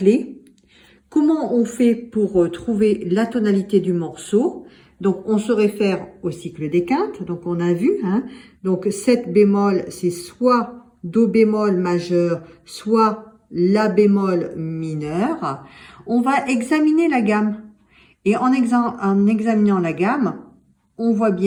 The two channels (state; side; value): identical; both; correlation 1.00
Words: comment on fait pour trouver la tonalité du morceau? Donc on se réfère au cycle des quintes, donc on a vu, hein, donc 7 bémols, c'est soit do bémol majeur, soit la bémol mineur. On va examiner la gamme. Et en examinant la gamme, on voit